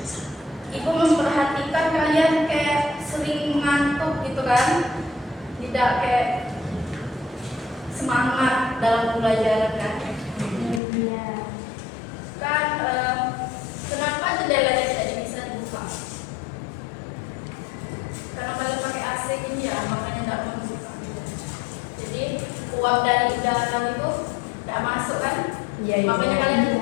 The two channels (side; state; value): right; drops out; at 10.8 s